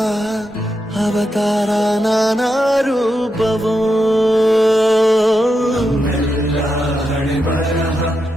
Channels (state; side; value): normal; both; correlation 0.86